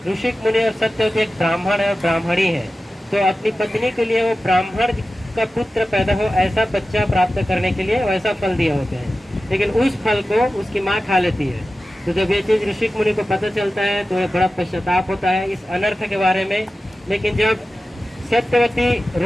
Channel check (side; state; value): both; normal; correlation 0.94